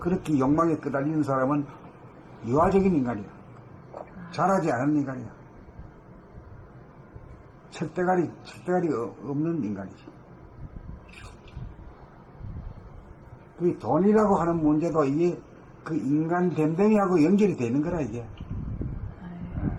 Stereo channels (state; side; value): identical; both; correlation 1.00